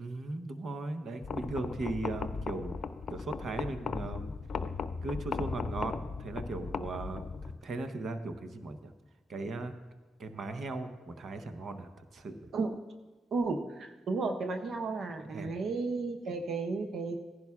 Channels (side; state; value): both; normal; correlation 0.78